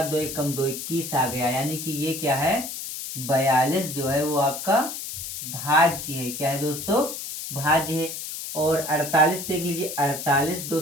2 1 कम 2 21 आ गया, यानी कि ये क्या है? 42 जो है वो आपका भाज्य है। क्या है दोस्तों? भाज्य है। और 48 देख लीजिए, 48 2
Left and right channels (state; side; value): noise; left; hiss, 7 dB below the sound